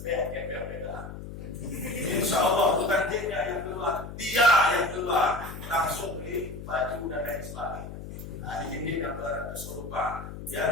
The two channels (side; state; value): left; noise; hum, 10 dB below the sound